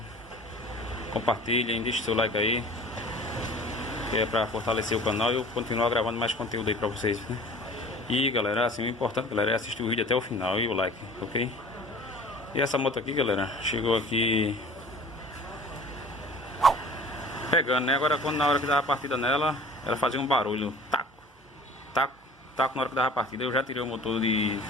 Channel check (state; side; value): normal; both; correlation 0.44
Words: compartilhem, deixem seu like aí, que é pra fortalecer o canal e eu continuar gravando mais conteúdo aí pra vocês, né? E galera, assim, o importante, galera, é assistir o vídeo até o final e o like, ok? E essa moto aqui, galera, chegou aqui pegando, né? Agora, quando na hora que dava a partida nela, ela fazia um barulho, taco, taco, taco na hora que dava a partida. Eu já tirei o motor de